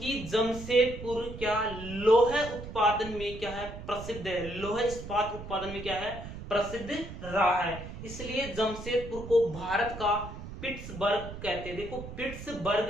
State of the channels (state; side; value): noise; right; rumble, 11 dB below the sound